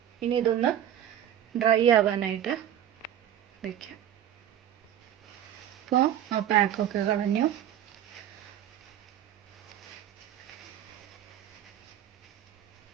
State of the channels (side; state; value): left; quieter; 10.8 dB